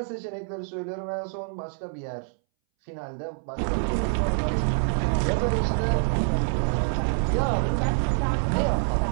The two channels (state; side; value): silent; left; 61 dB below the other